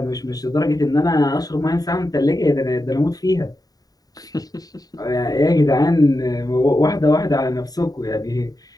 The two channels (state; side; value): late; right; 0.18 ms